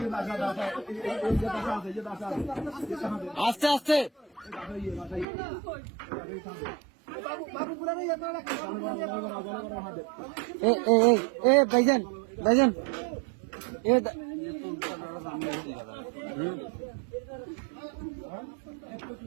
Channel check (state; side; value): drops out; left; at 5.2 s